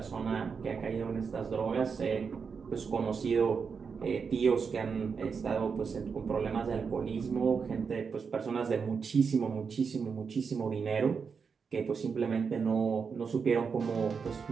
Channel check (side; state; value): left; quieter; 5.8 dB